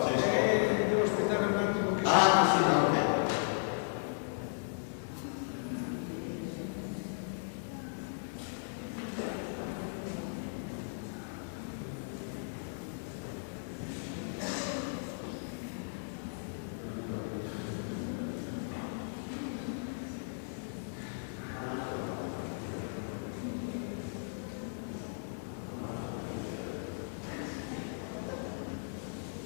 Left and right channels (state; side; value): silent; right; digital silence